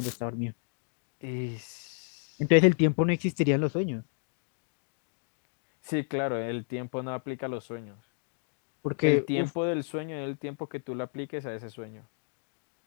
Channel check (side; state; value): right; silent; digital silence